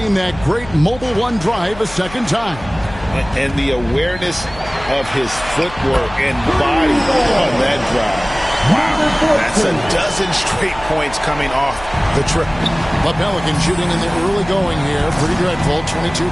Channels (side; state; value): left; noise; hum, 16 dB below the sound